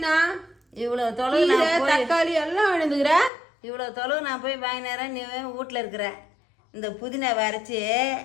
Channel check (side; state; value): right; drops out; at 3.3 s